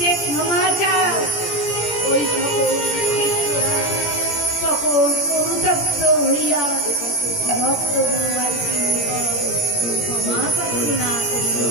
ক্ষমা চাও। ওই সকল শিষ্যরা তখন অনুতপ্ত হইয়া ভক্ত গুরুভাইকে ক্ষমা প্রার্থনা করিল।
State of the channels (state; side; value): late; right; 17 ms